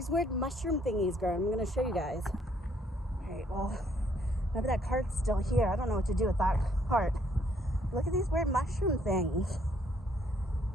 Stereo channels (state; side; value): normal; both; correlation 0.67